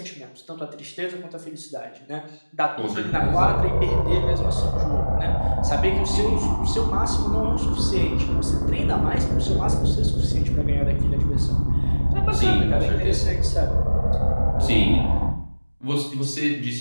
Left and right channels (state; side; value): inverted; both; correlation -1.00